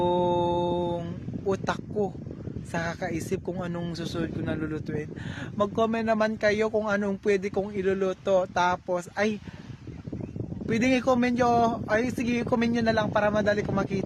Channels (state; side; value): identical; both; correlation 1.00